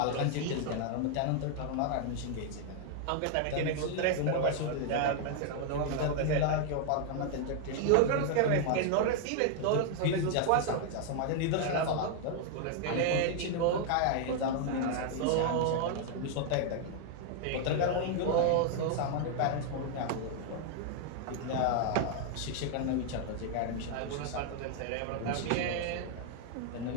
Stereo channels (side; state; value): both; different; correlation 0.00